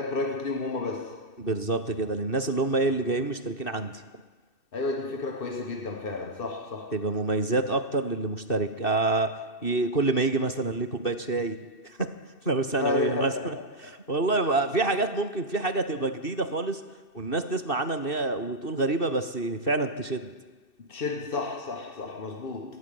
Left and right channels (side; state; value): right; late; 2.6 ms